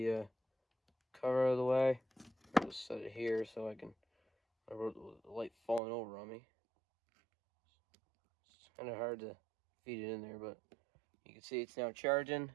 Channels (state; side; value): drops out; left; at 5.8 s